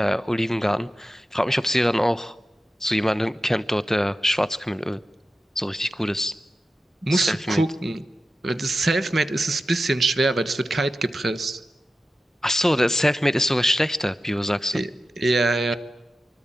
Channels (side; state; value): both; normal; correlation 0.92